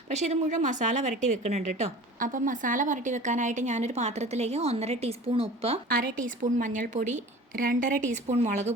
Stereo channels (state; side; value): normal; both; correlation 0.41